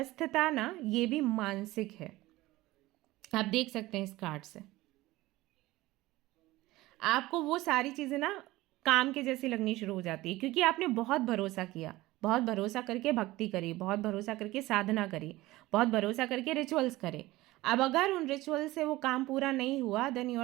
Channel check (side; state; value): left; quieter; 18.4 dB